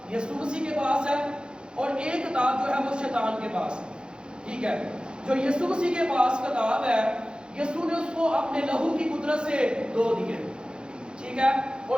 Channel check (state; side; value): late; left; 0.050 ms